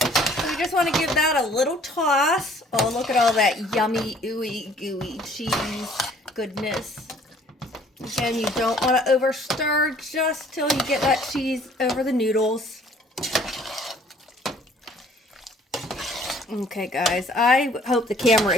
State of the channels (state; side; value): normal; both; correlation 0.57